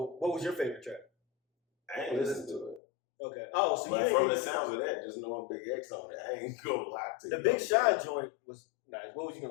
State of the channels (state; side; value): drops out; right; at 2.8 s